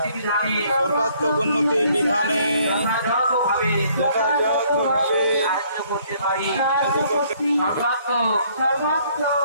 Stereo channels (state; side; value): inverted; both; correlation -0.63